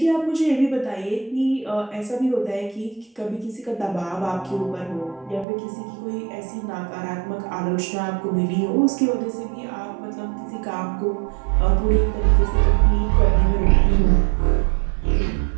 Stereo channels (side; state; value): left; drops out; at 5.5 s